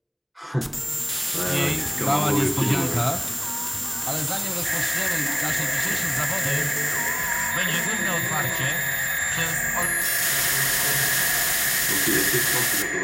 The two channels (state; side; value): identical; both; correlation 1.00